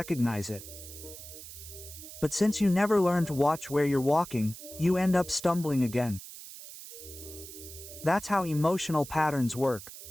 it. But since you never learn to watch where you're walking, you end up stumbling again. That's how emotional patterns work.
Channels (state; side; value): noise; right; hiss, 14 dB below the sound